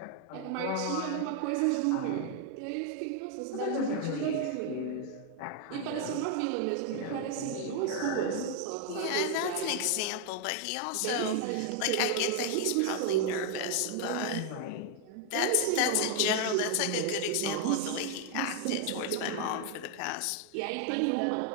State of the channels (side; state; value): both; different; correlation 0.00